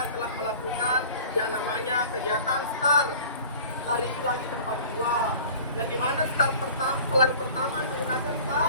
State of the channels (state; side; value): inverted; both; correlation -0.43